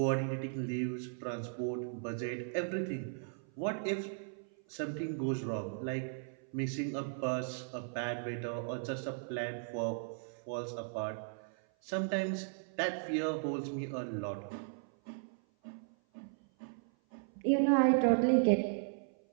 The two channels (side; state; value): left; silent; 53 dB below the other